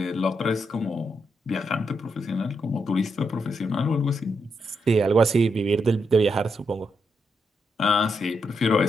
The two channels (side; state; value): both; normal; correlation 0.81